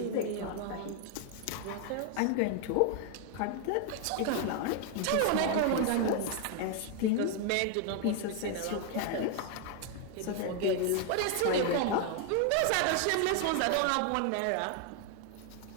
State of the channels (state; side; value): different; both; correlation 0.01